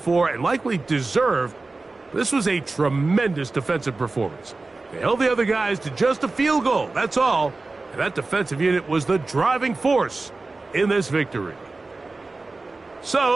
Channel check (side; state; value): left; quieter; 3.5 dB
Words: and likely deserved. This was a tremendous defensive performance. They held the other guys to just a field goal, that's all. And that defensive unit was the driving force in this victory.